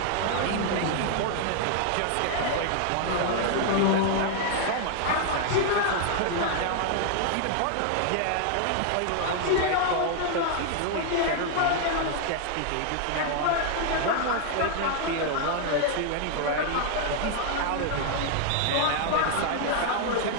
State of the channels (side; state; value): both; different; correlation 0.00